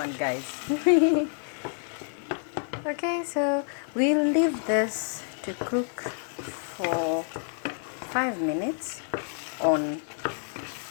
guys. Okay, so we'll leave this to cook for 5 minutes on.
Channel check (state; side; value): silent; right; digital silence